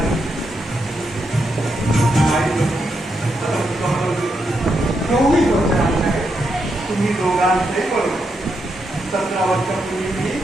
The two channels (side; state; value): both; normal; correlation 0.82